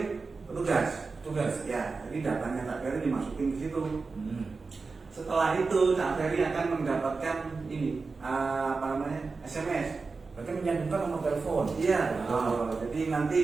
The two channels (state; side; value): quieter; left; 4.3 dB